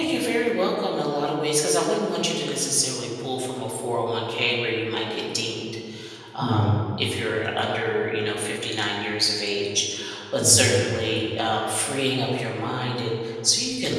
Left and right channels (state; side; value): identical; both; correlation 1.00